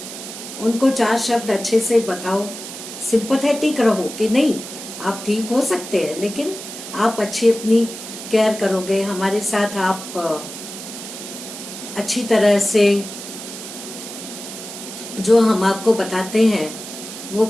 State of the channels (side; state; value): right; noise; hiss, 11 dB below the sound